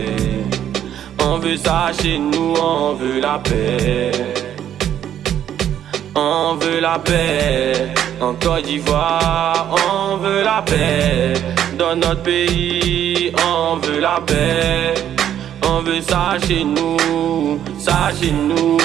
On veut ça chez nous, on veut la paix. On veut la paix. En Côte d'Ivoire, on veut la paix. Dans notre pays, on veut la paix. On veut ça chez nous, ça chez nous.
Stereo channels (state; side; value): quieter; left; 10.4 dB